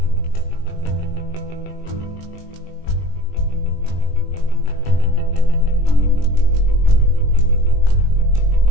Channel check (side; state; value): right; late; 20 ms